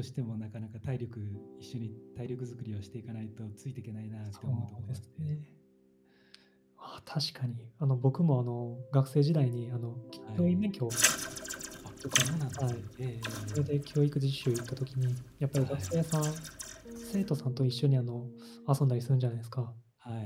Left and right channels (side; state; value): both; identical; correlation 1.00